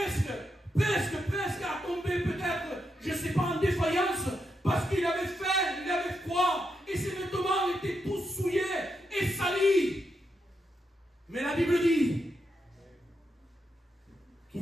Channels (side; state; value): both; normal; correlation 0.83